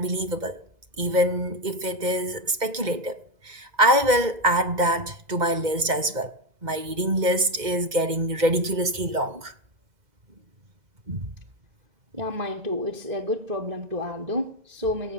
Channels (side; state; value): left; late; 2.1 ms